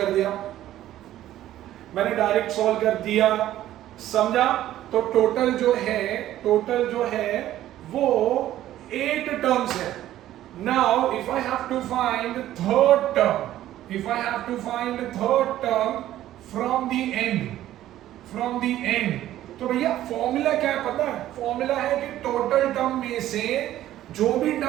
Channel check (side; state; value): left; quieter; 13.3 dB